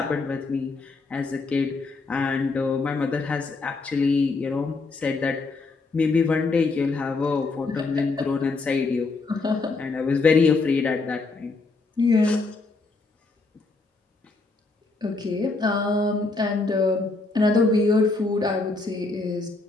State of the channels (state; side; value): quieter; right; 3.7 dB